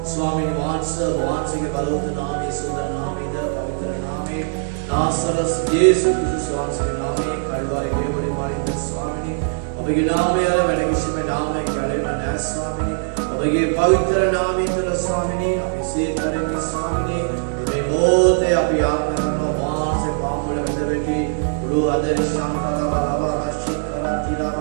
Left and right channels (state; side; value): silent; left; digital silence